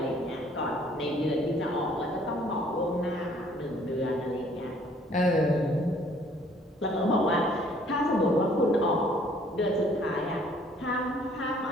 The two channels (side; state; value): both; normal; correlation 0.59